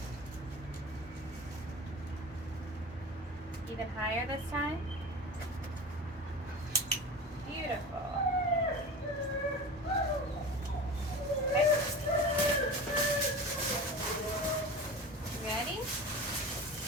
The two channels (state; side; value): normal; both; correlation 0.32